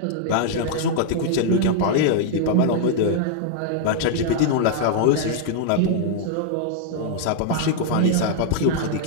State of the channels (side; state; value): both; different; correlation -0.01